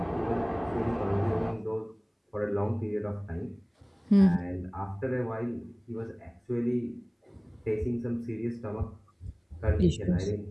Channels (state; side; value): identical; both; correlation 1.00